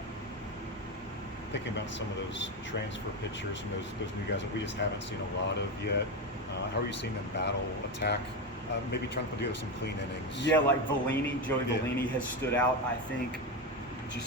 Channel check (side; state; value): both; normal; correlation 0.15